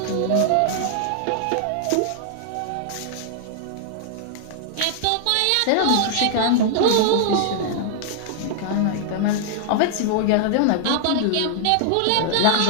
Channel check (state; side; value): different; both; correlation -0.01